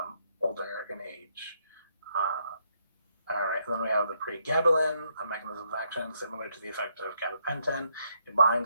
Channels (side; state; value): both; inverted; correlation -0.75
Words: older in age. All right, and then we have the pregabalin, a mechanism of action similar to the effect of gabapentin. It